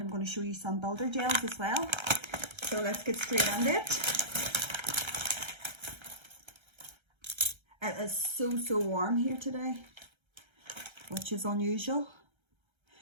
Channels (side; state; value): left; late; 1.3 ms